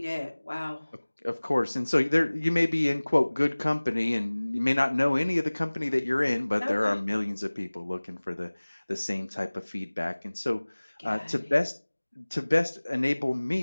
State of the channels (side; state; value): both; inverted; correlation -1.00